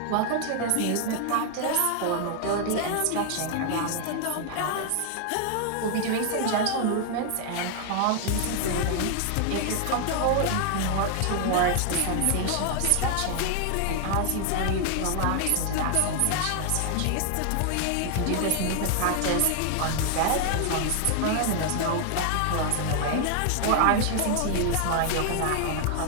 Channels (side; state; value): both; different; correlation 0.00